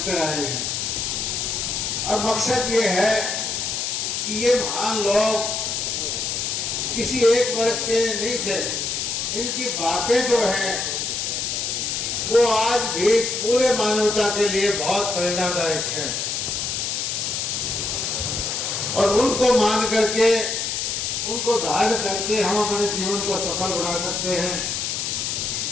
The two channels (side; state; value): left; noise; hiss, 1 dB below the sound